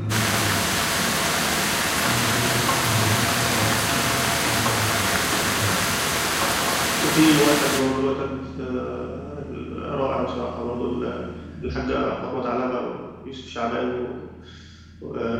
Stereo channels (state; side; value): identical; both; correlation 1.00